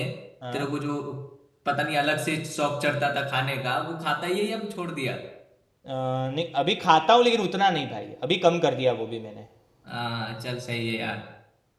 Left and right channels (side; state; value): both; identical; correlation 1.00